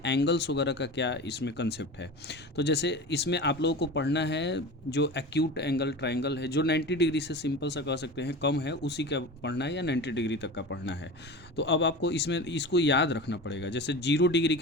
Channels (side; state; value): both; normal; correlation 0.31